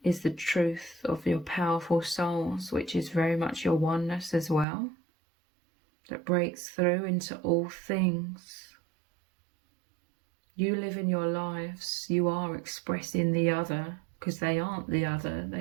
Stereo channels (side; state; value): left; drops out; at 4.7 s